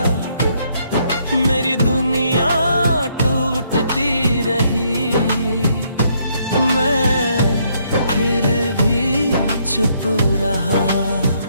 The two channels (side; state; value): both; inverted; correlation -0.71